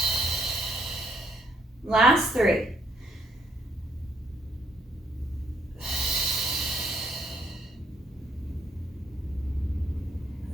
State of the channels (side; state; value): both; normal; correlation 0.69